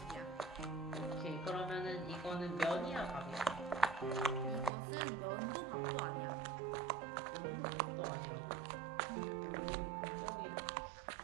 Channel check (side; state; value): left; drops out; at 4.7 s